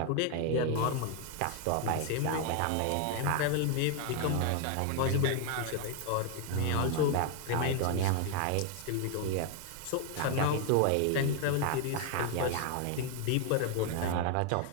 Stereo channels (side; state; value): both; different; correlation 0.01